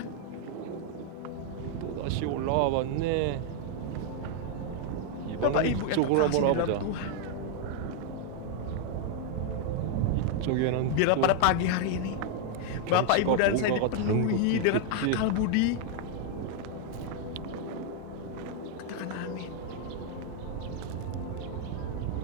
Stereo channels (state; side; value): different; both; correlation 0.00